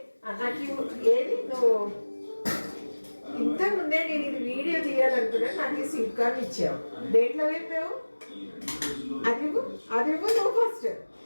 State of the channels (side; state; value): both; inverted; correlation -1.00